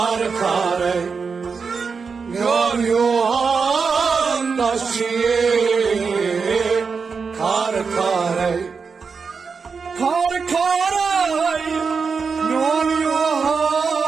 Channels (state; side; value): quieter; left; 5.3 dB